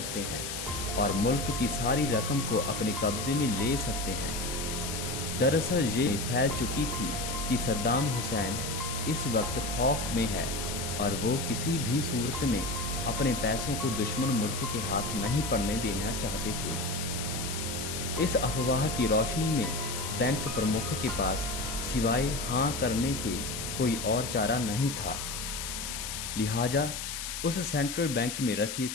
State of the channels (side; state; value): left; noise; hiss, 5 dB below the sound